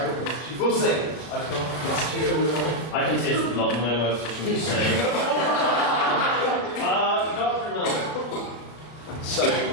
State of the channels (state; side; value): late; right; 33 ms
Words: we'll see. I can taste the blood in my mouth just from you saying. Dr. Miller. So,